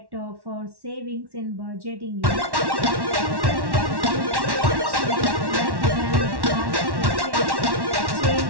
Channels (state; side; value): late; left; 1.1 ms